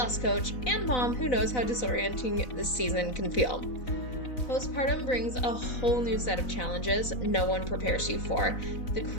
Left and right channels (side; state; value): right; late; 4.0 ms